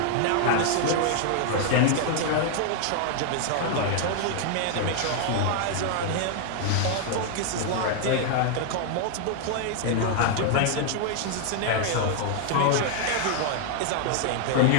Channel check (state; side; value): different; both; correlation 0.00